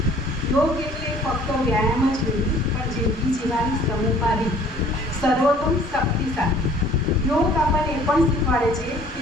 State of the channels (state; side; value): normal; both; correlation 0.54